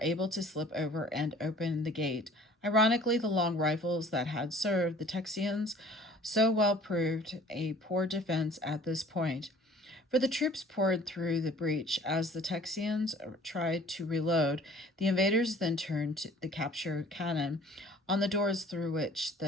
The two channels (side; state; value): both; normal; correlation 0.51